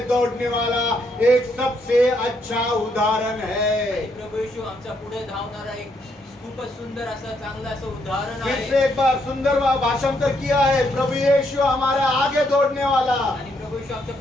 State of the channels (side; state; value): both; normal; correlation 0.74